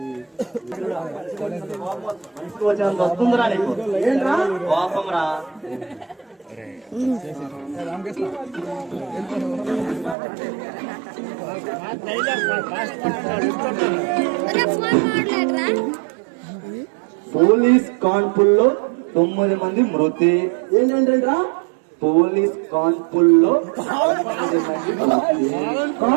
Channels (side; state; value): left; drops out; at 10.2 s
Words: మనిషికి వచ్చేంత వస్తుందిరా నీకు. ఏంట్రా కోపం రా? పోలీస్ కాన్పుల్లో 9 మంది మృతి. ఏంటంటరా? పోలీస్ కాన్పుల్లో